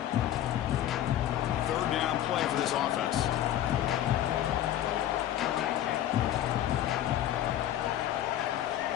Third down play for this offense.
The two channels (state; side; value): quieter; right; 12.0 dB